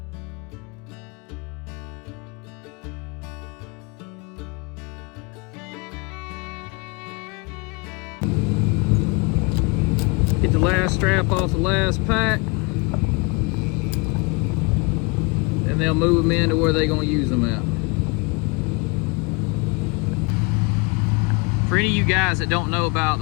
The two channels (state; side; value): quieter; right; 29.0 dB